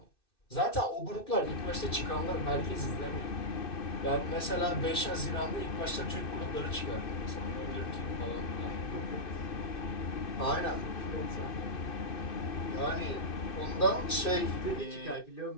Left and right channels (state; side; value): late; right; 2.6 ms